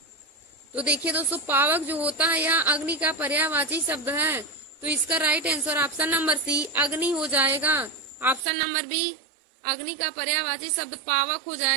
तो देखिए दोस्तों, पावक जो होता है यह अग्नि का पर्यायवाची शब्द है। तो इसका right answer option number C अग्नि हो जाएगा। ऑप्शन नंबर बी अग्नि का पर्यायवाची शब्द पावक हो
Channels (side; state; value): left; drops out; at 8.5 s